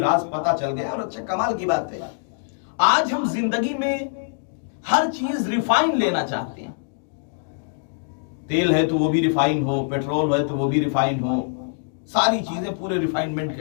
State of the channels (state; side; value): silent; right; digital silence